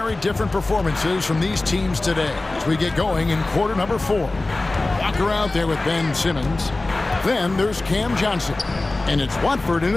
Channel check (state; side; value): quieter; right; 3.0 dB